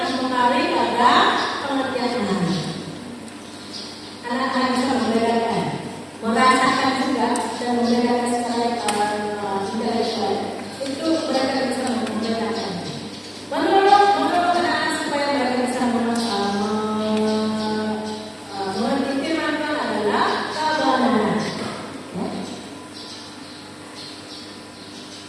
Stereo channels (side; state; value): both; identical; correlation 1.00